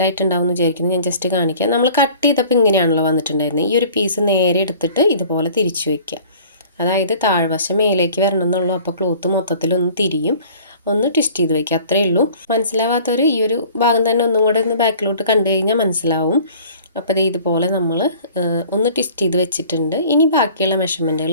എന്ന് വിചാരിക്കുന്നു. ഞാൻ ജസ്റ്റ് കാണിക്കാം. നമ്മൾ കട്ട് ചെയ്തപ്പോൾ ഇങ്ങനെയാണല്ലോ വന്നിട്ടുണ്ടായിരുന്നത്. ഈ ഒരു പീസ് നേരെ എടുത്തിട്ട് ഇതുപോലെ തിരിച്ചു വയ്ക്കുക. അതായത് താഴ്വശം മേലേക്ക് വരണം എന്നുള്ളൂ. അപ്പോൾ ക്ലോത്ത് മൊത്തത്തിലൊന്ന് തിരിയും, ഒന്ന് ട്വിസ്റ്റ് ചെയ്ത് വയ്ക്കുക, അത്രയേ ഉള്ളൂ. മനസ്സിലാവാത്തവർ ഈ ഒരു ഭാഗം തന്നെ ഒന്നും കൂടെ ഒന്ന് ബാക്കിലോട്ട് കണ്ടു കഴിഞ്ഞാൽ മനസ്സിലാവും. അപ്പോൾ ഇത് ഇതുപോലെ നമ്മൾ ഒന്ന് ട്വിസ്റ്റ് ചെയ്ത് വെച്ചിട്ടുണ്ട്. ഇനി ബാക്കിയുള്ള മെഷർമെൻറ്റുകൾ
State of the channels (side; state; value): both; inverted; correlation -0.48